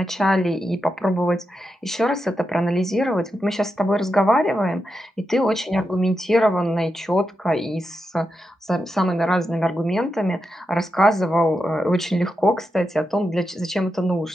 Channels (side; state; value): both; normal; correlation 0.87